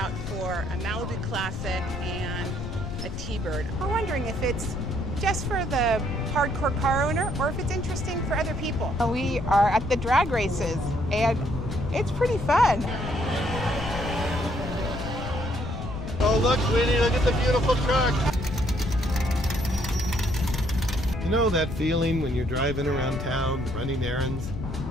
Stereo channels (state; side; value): noise; left; rumble, 6 dB below the sound